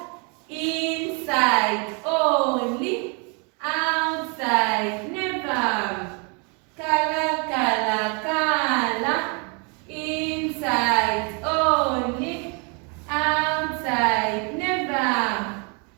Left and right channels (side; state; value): left; quieter; 34.6 dB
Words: Inside only. Outside never. Color, color, color. Inside only. Outside never.